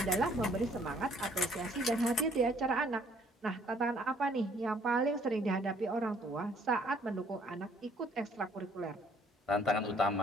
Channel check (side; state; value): both; normal; correlation 0.62